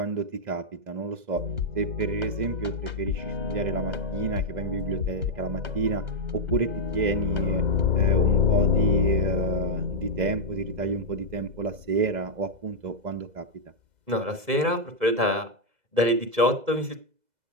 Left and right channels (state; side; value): late; left; 2.0 ms